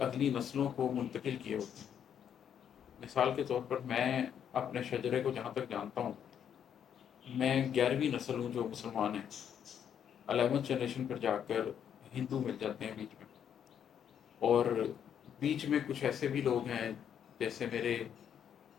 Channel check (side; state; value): right; quieter; 8.8 dB